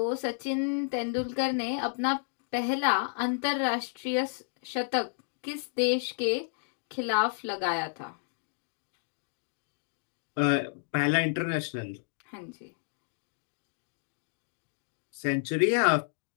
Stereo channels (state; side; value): silent; right; digital silence